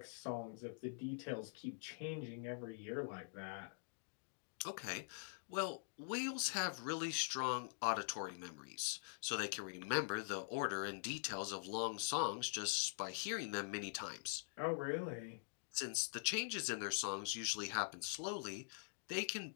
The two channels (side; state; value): right; silent; digital silence